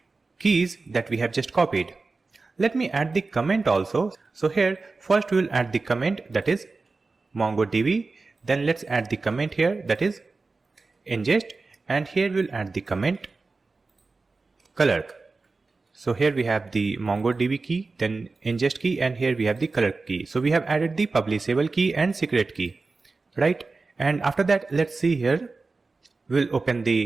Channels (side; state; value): left; quieter; 3.9 dB